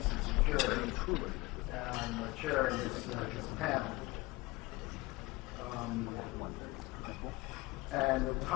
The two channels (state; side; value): quieter; right; 22.3 dB